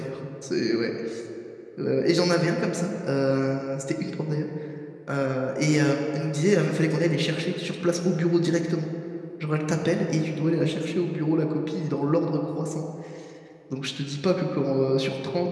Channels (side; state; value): both; identical; correlation 1.00